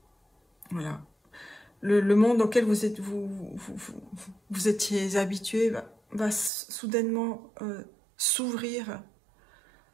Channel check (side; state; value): left; drops out; at 6.5 s